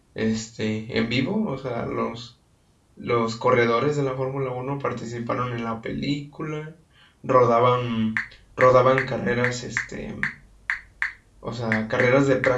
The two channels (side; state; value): both; identical; correlation 1.00